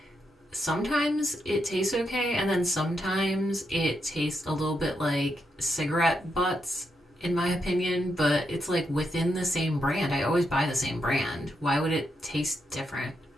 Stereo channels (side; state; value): both; normal; correlation 0.82